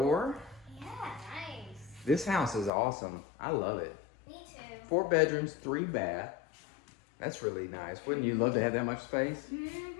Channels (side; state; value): right; drops out; at 2.7 s